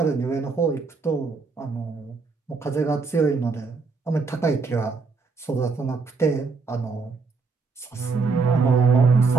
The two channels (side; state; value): left; quieter; 4.5 dB